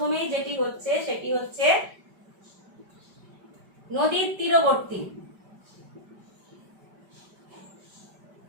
যেটি হচ্ছে সেটি হচ্ছে নদীর তীরবর্তী,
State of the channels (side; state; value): left; late; 5.1 ms